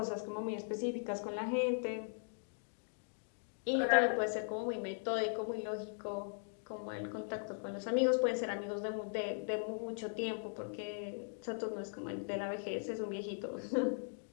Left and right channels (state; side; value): silent; right; digital silence